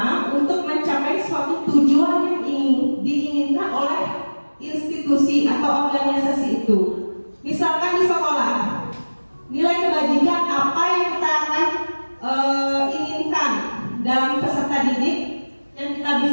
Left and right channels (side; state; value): both; inverted; correlation -1.00